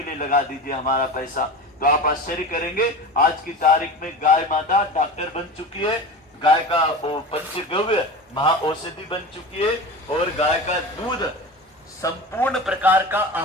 लिए लगा दीजिए हमारा पैसा। तो आप आश्चर्य करेंगे, आज की तारीख में गाय माता डॉक्टर बन चुकी है, गाय का पंचगव्य महा औषधि बन चुकी है और गाय का दूध संपूर्ण प्रकार का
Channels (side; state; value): both; normal; correlation 0.31